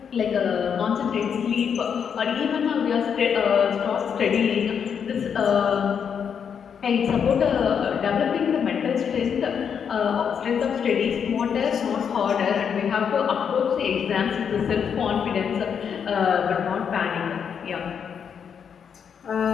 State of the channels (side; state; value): right; quieter; 7.3 dB